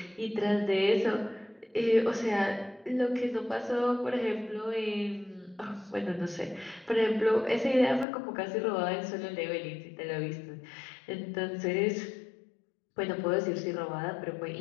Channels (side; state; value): right; drops out; at 8.1 s